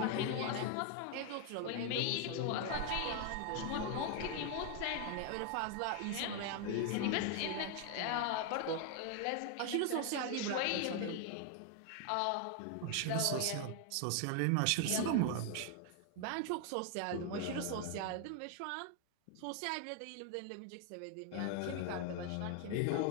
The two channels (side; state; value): both; different; correlation 0.00